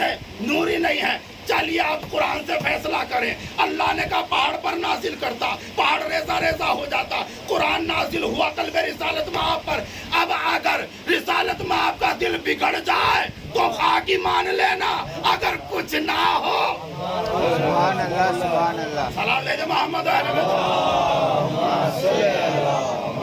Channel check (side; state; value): both; identical; correlation 1.00